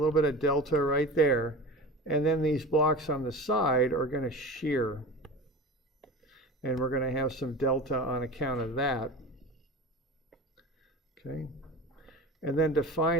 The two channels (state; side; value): normal; both; correlation 0.32